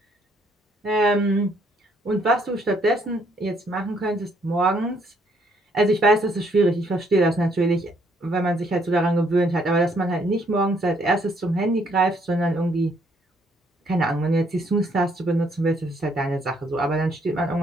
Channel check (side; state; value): both; normal; correlation 0.68